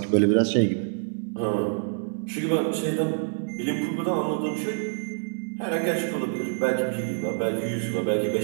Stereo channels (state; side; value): silent; left; 61 dB below the other